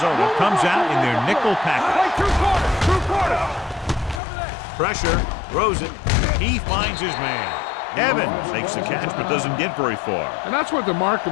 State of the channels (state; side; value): drops out; right; at 4.2 s